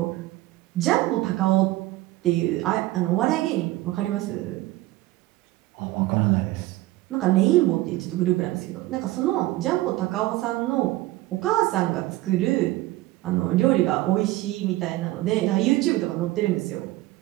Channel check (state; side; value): quieter; left; 17.8 dB